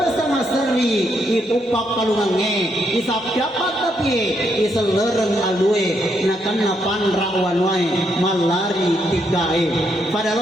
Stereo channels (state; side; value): normal; both; correlation 0.77